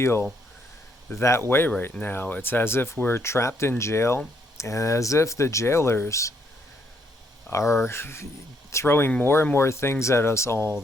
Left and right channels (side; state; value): both; normal; correlation 0.72